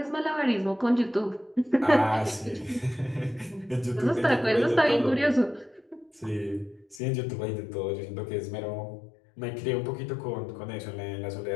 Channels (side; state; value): right; drops out; at 7.0 s